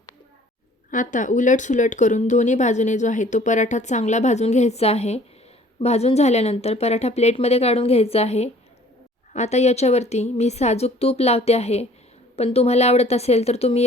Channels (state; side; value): normal; both; correlation 0.54